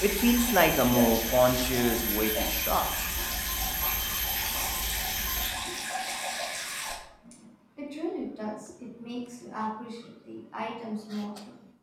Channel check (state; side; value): identical; both; correlation 1.00